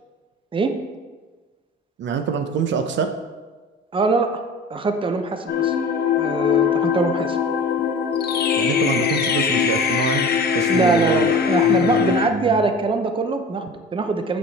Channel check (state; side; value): normal; both; correlation 0.38